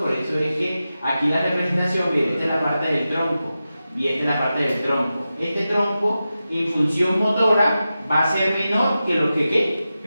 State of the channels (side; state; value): both; inverted; correlation -0.92